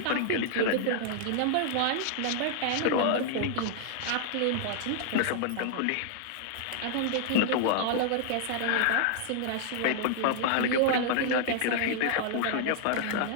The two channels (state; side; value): different; both; correlation -0.01